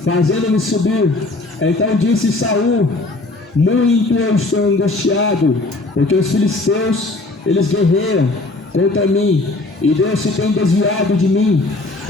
fazendo-me subir? Então disse Saul: muito eu estou angustiado, porque os filisteus, eles guerreiam contra mim, e Deus se tem desviado de mim,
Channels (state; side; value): quieter; right; 3.0 dB